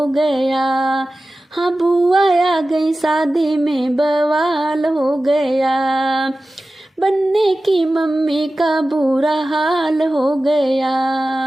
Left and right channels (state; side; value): normal; both; correlation 0.95